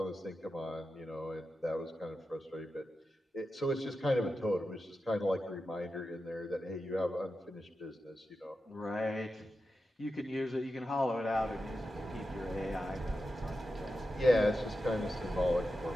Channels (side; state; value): both; normal; correlation 0.90